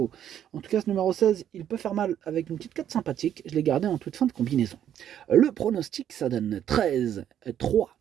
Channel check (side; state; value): left; quieter; 10.2 dB